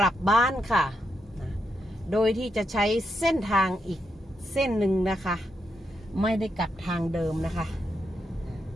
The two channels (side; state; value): both; normal; correlation 0.82